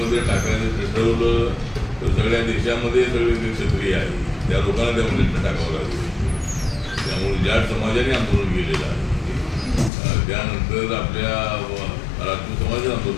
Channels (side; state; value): right; drops out; at 9.9 s